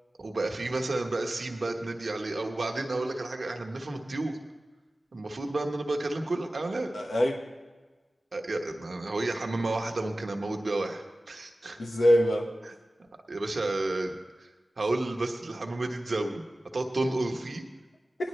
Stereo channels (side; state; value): both; normal; correlation 0.96